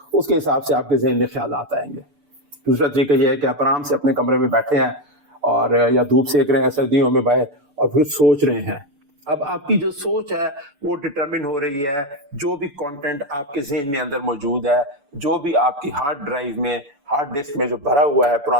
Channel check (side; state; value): left; late; 6.9 ms